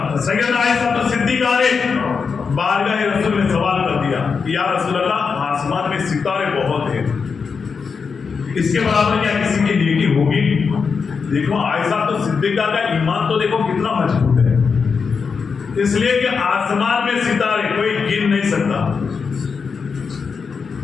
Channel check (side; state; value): right; quieter; 5.5 dB